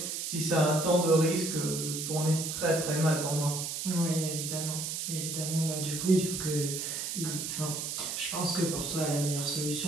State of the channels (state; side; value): noise; right; hiss, 4 dB below the sound